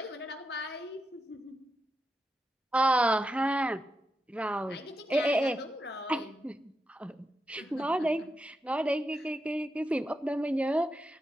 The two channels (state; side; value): normal; both; correlation 0.86